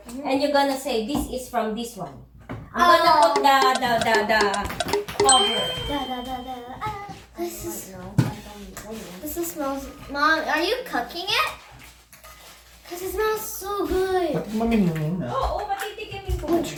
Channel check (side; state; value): both; identical; correlation 1.00